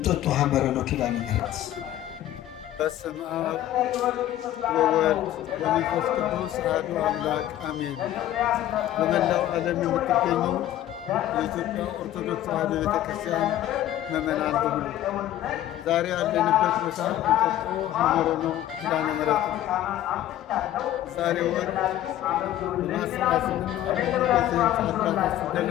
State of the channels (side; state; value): right; quieter; 12.9 dB